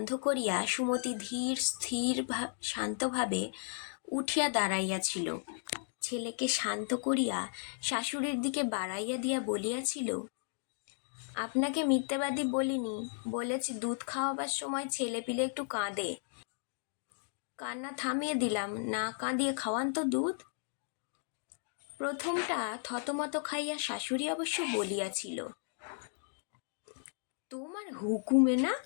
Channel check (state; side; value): silent; right; digital silence